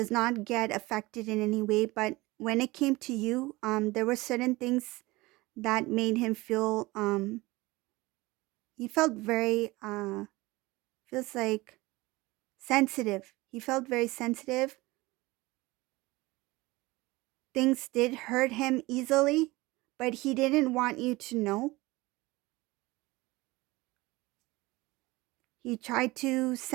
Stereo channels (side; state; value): left; quieter; 21.1 dB